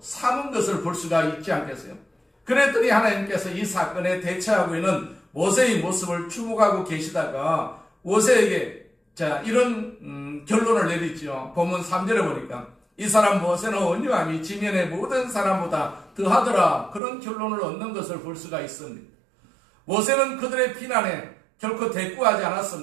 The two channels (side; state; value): left; drops out; at 17.0 s